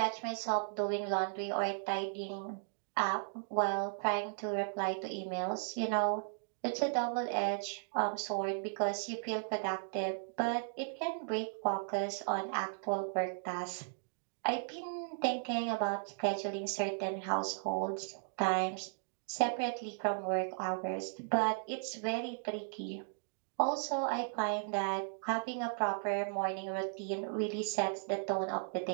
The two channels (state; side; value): silent; left; digital silence